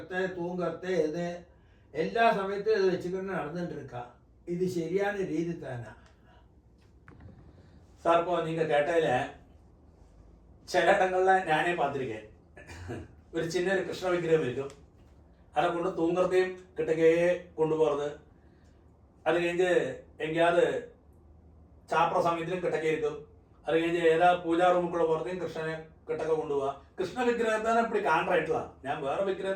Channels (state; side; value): identical; both; correlation 1.00